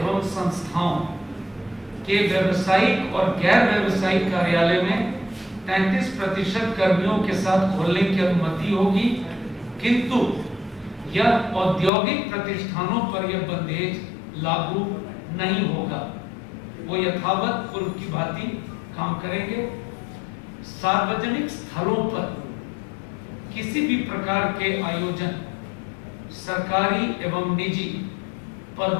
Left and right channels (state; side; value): drops out; right; at 11.9 s